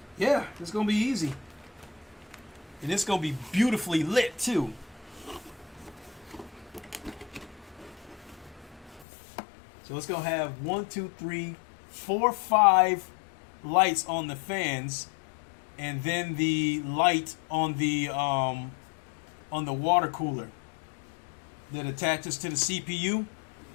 Yeah, it's gonna be easy. And it's gonna be beautifully lit too. So it's gonna have 1, 2, 3, 4, 5 lights on the fans, and then the light on the water cooler that attaches to the CPU.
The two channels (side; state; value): right; drops out; at 9.1 s